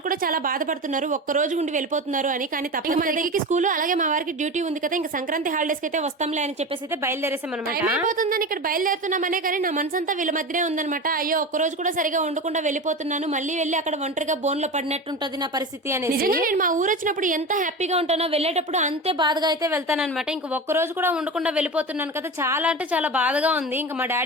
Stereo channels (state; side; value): normal; both; correlation 0.26